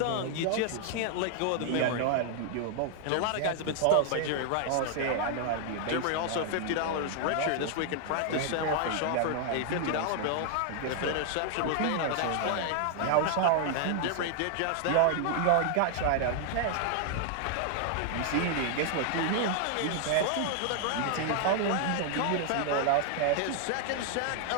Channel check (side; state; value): both; different; correlation 0.00